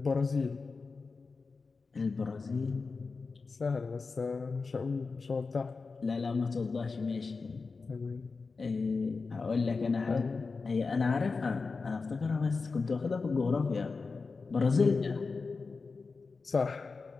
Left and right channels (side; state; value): right; quieter; 4.4 dB